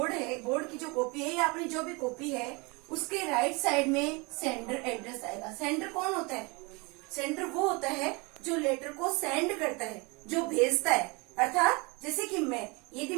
है, बोर्ड की जो कॉपी है या अपनी जो भी कॉपी है उसके राइट साइड में सेंडर एड्रेस आएगा। सेंडर कौन होता है, सेंडर वो होता है जो लेटर को सेंड करता है, जो भेजता है। अर्थात जैसे कि यदि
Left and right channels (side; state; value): left; quieter; 28.0 dB